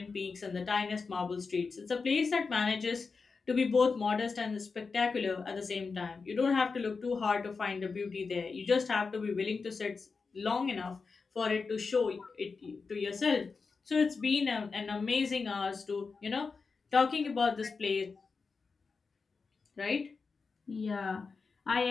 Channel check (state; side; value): quieter; right; 4.7 dB